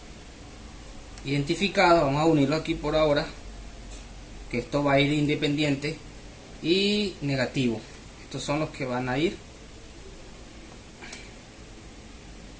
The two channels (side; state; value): both; identical; correlation 1.00